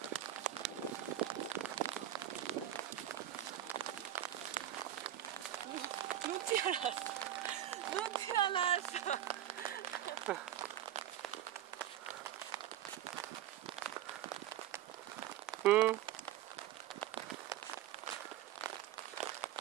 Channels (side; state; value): left; quieter; 12.0 dB